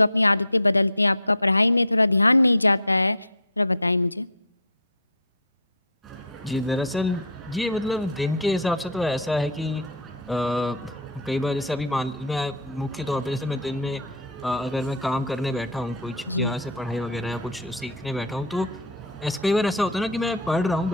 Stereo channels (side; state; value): both; normal; correlation -0.20